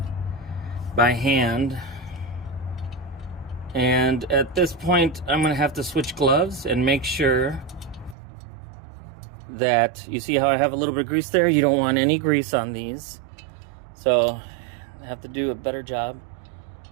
by hand. And at this point, I'm going to have to switch gloves and make sure that, you see how I have a little bit of grease there? You don't want any grease on these. So I have to do a better job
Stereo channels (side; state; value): left; drops out; at 8.2 s